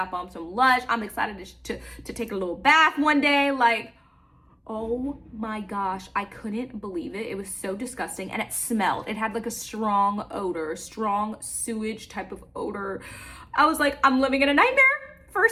bombs from Lush. I'm excited to take a little bath one day. Like, oh my gosh, I couldn't believe it. It was so disgusting and it smelled. It had like a strong odor, strong sewage type of odor. I was like, I'm living in a nightmare.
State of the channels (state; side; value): identical; both; correlation 1.00